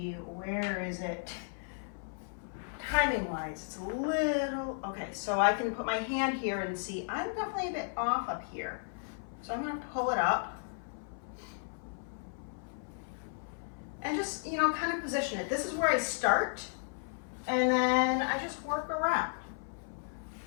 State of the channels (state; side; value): silent; right; 55 dB below the other